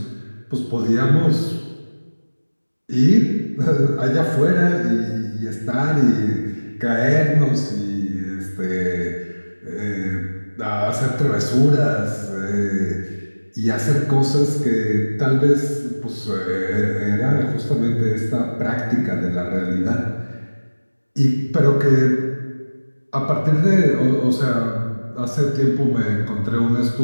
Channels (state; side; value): inverted; both; correlation -1.00